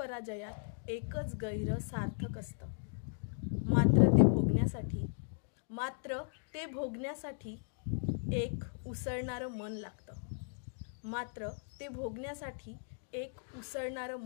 एकच गैर सार्थक असतं। मात्र ते भोगण्यासाठी एक उसळणारं मन लागतं। मात्र ते भोगण्यासाठी एक उसळणारं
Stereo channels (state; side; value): silent; right; digital silence